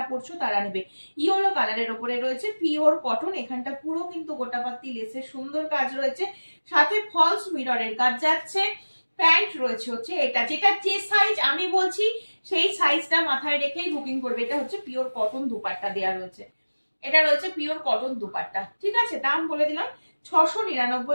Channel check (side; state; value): both; inverted; correlation -1.00